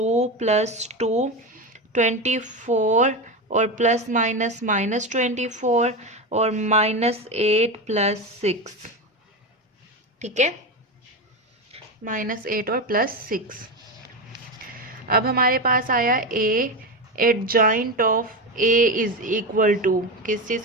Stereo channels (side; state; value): both; normal; correlation 0.17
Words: plus 2 24 और प्लस माइनस -24 और -8 प्लस 6. ठीक है, -8 और प्लस 6. अब हमारे पास आया A adjoint of A is equal to, किस चीज़